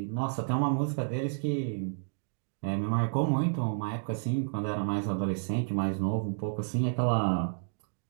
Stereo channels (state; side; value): silent; left; digital silence